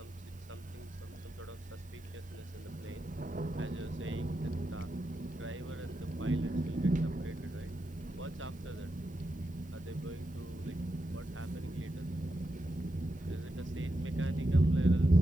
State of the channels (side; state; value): both; normal; correlation 0.87